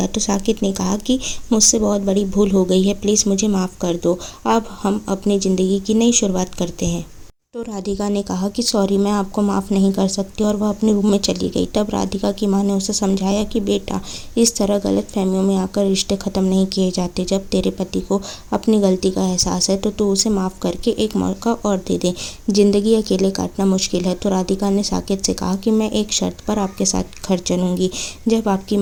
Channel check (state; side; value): identical; both; correlation 1.00